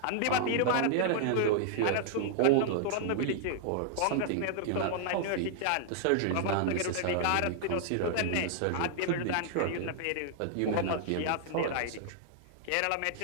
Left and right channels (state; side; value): different; both; correlation 0.00